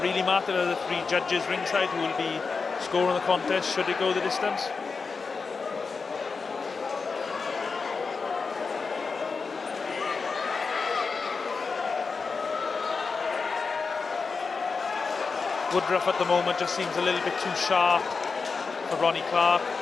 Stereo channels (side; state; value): right; quieter; 4.8 dB